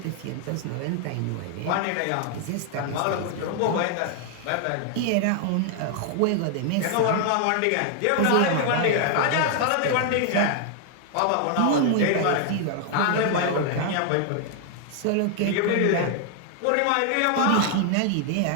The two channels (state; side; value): different; both; correlation 0.00